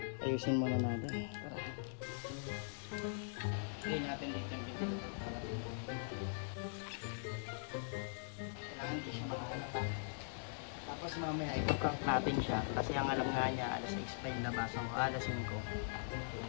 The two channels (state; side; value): silent; right; digital silence